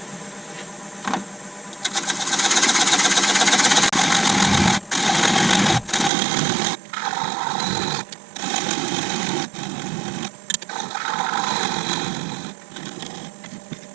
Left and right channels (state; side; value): drops out; left; at 6.1 s